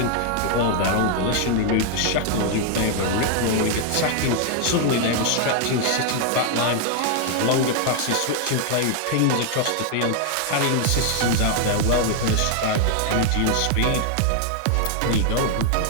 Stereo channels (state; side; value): different; both; correlation 0.00